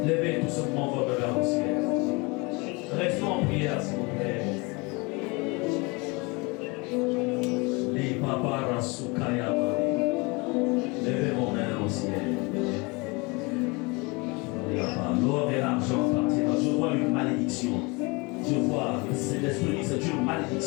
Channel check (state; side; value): quieter; right; 27.5 dB